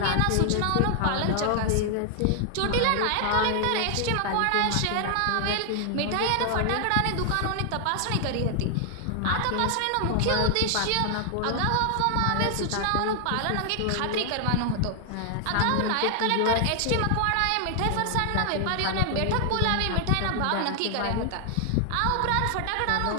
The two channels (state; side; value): different; both; correlation 0.00